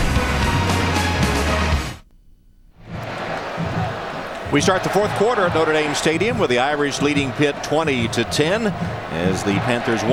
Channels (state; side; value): identical; both; correlation 1.00